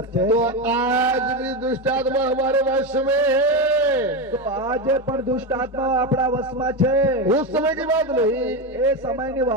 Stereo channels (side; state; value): both; normal; correlation 0.14